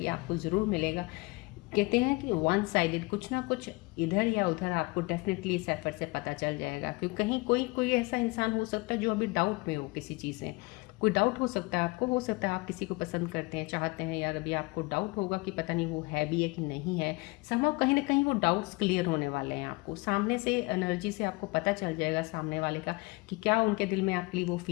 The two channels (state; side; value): quieter; right; 24.9 dB